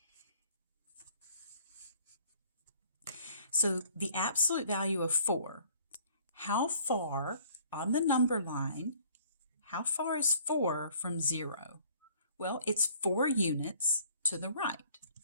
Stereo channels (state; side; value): inverted; both; correlation -0.57